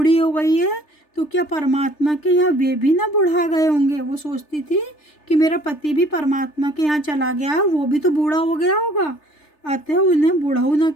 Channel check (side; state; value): right; late; 3.3 ms